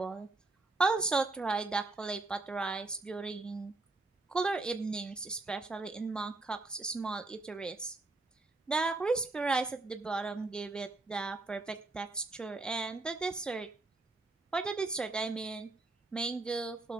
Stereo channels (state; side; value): quieter; left; 3.3 dB